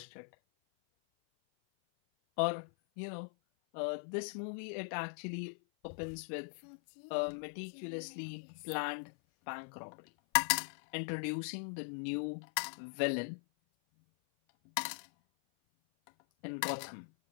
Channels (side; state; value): right; silent; 51 dB below the other